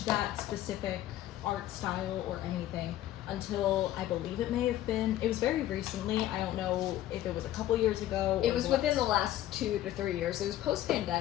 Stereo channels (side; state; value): right; quieter; 13.5 dB